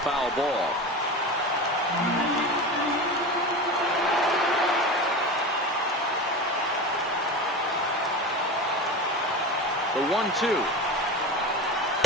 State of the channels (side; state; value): both; normal; correlation 0.26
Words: ball. The 1-2.